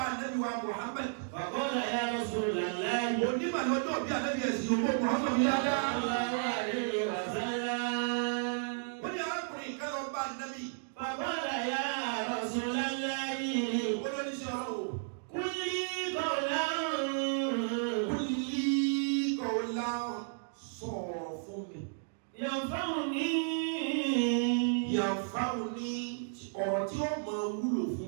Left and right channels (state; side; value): silent; left; digital silence